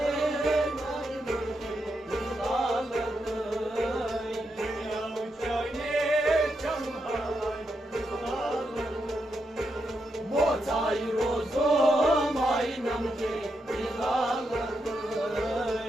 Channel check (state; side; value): normal; both; correlation 0.83